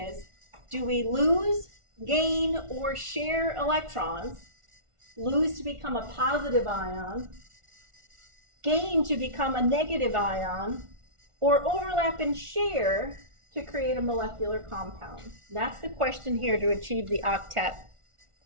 do we lose, gain, or share electrons? Lose to become a positive ion, gain to become a negative ion, or overlap and share to create a molecular compound? That's the question here to achieve the octet.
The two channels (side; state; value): left; late; 1.4 ms